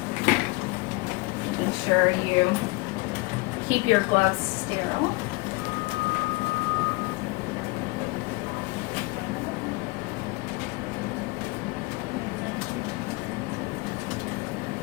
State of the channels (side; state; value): right; quieter; 25.3 dB